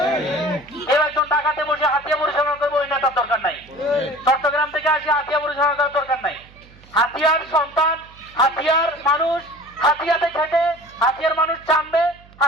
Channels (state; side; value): noise; right; hum, 25 dB below the sound